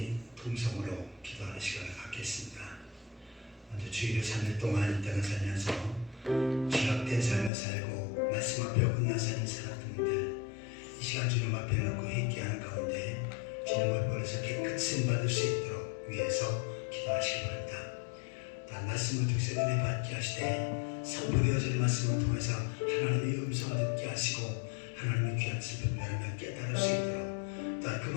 통성으로 기도하는 시간을 갖겠습니다. 먼저 주일을 3일 동안 이 땅을 살면서 죄악된 삶을 살고 말씀 앞에 어긋난 삶을 살았던 분들, 이 시간 주님 앞에 놓고 회개하는 가운데 주님을 버려서 깨끗이 받을 수 있도록 위해서 기도하시기 바랍니다. 단 말씀을 통해서 은혜 받게 하시되 선포되어지는 말씀을 통해서 하나님의 음성을 듣게 하시고 하나님의 귀한 뜻을 분별하며 깨달을 수 있도록, 또한 그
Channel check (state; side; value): drops out; right; at 7.5 s